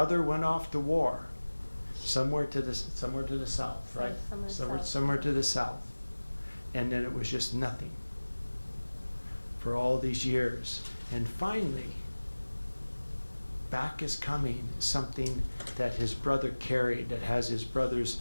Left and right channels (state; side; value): inverted; both; correlation -1.00